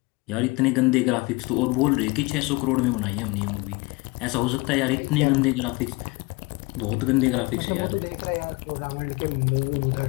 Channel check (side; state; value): right; quieter; 25.0 dB